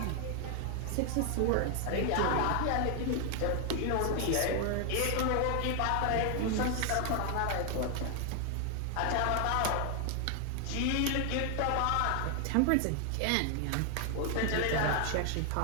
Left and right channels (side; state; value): both; different; correlation 0.00